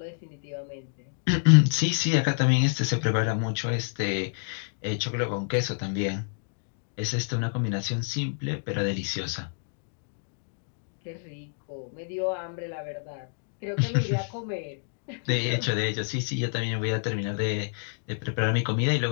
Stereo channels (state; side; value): silent; right; digital silence